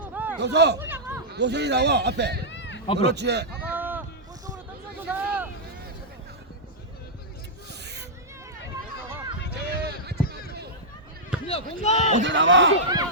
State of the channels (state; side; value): normal; both; correlation -0.09